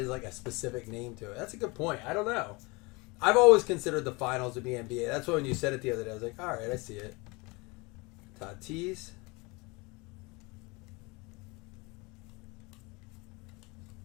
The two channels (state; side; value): quieter; right; 26.2 dB